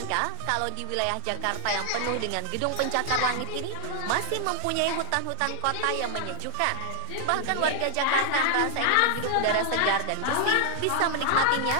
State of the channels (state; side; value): different; both; correlation 0.00